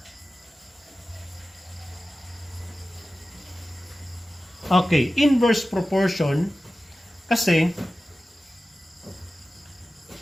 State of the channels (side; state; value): both; normal; correlation 0.95